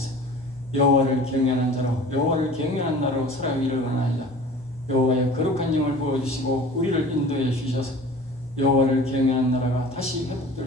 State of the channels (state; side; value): normal; both; correlation 0.43